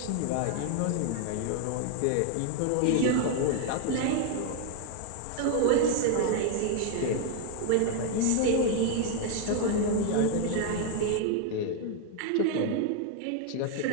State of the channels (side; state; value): both; different; correlation 0.01